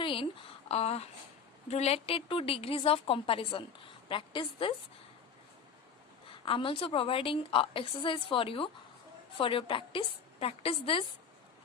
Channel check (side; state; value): right; quieter; 6.5 dB